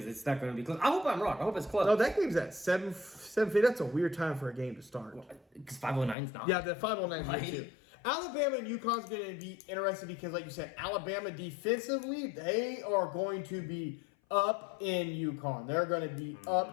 it's not gonna be close. I hope I'm wrong. I hope it's close. No, that game's at 7:50. That's a weird time for a game to start. Because 509's not. Yeah, the 509 Right. too. Alabama and UConn's going to be interesting because, like you said, Alabama defensively, they are going to be up in UConn. They're going to be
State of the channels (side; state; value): right; drops out; at 6.2 s